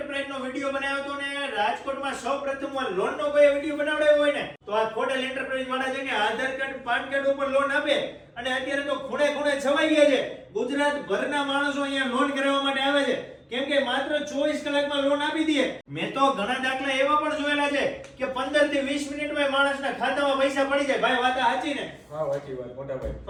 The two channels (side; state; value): both; identical; correlation 1.00